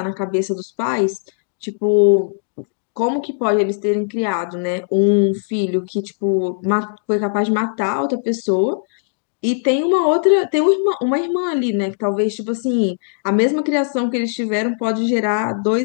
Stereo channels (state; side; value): silent; right; digital silence